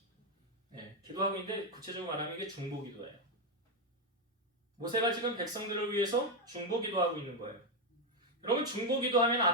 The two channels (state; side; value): normal; both; correlation 0.05